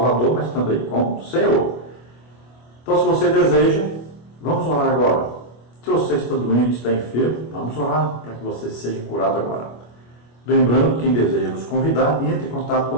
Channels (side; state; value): right; late; 25 ms